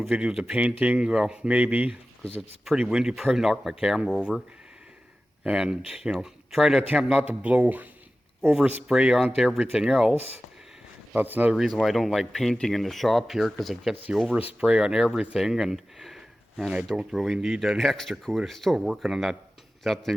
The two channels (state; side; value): normal; both; correlation 0.95